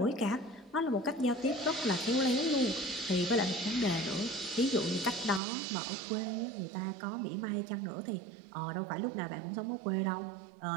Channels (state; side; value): drops out; left; at 5.4 s